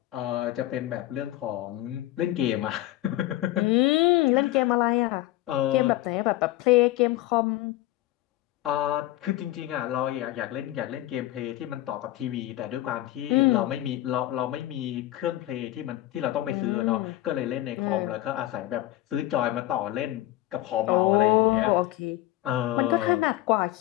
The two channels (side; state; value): right; quieter; 15.8 dB